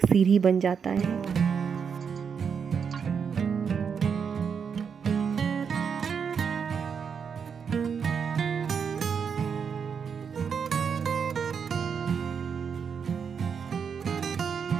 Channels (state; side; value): quieter; left; 6.6 dB